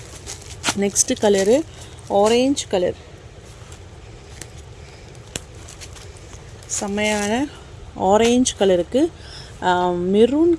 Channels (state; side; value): identical; both; correlation 1.00